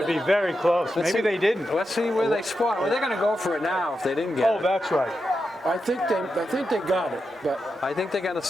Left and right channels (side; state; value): both; normal; correlation 0.88